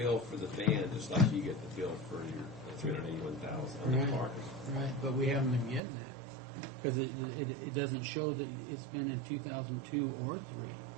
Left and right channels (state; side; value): drops out; left; at 5.8 s